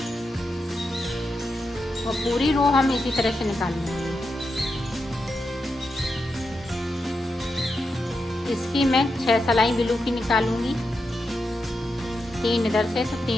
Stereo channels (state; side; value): normal; both; correlation 0.87